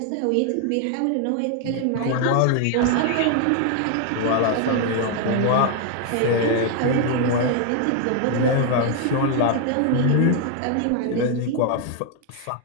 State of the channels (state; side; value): different; both; correlation 0.00